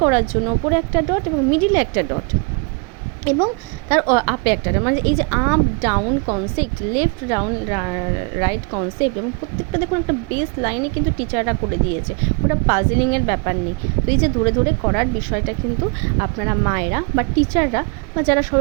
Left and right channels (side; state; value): left; quieter; 32.8 dB